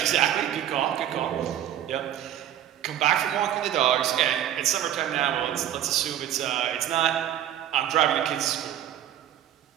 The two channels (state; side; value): quieter; left; 11.3 dB